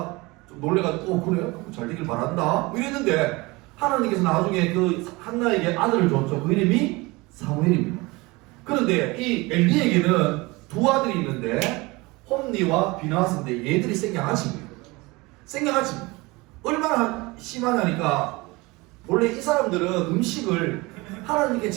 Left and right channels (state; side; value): quieter; left; 23.5 dB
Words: 좀 놀래가지고 그래? 잘 되길 바란다 이랬는데 하나님께서 나중에 그 한나에게 아들을 줬죠. 그 이름이 사무엘입니다. 그런데 이 엘리에게는 두 아들이 있는데 홈니와 비나스인데 얘들이 생양아치입니다. 생양아치입니다. 얼마나 심하냐니까 원래 이 사람들은 음식을 하나님께